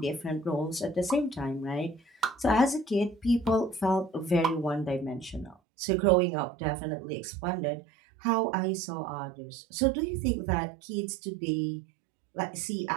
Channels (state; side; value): drops out; left; at 5.6 s